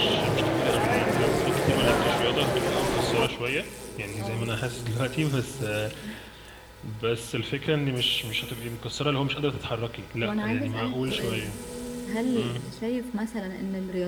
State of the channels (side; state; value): both; identical; correlation 1.00